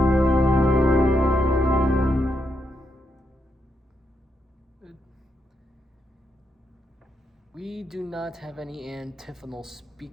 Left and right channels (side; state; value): both; normal; correlation 0.81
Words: We do not have any antiphonal